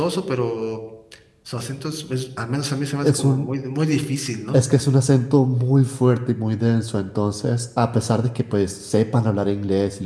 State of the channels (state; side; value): identical; both; correlation 1.00